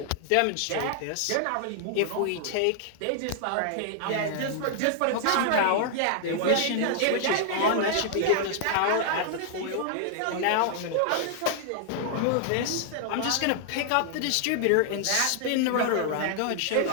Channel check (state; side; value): different; both; correlation 0.00